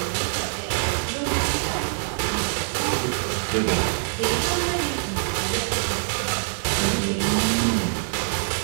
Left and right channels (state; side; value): silent; left; digital silence